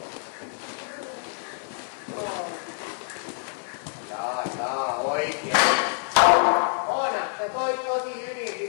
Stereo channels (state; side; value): silent; right; digital silence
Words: Jaa, oikein. Oona, sä toit tosi hyvin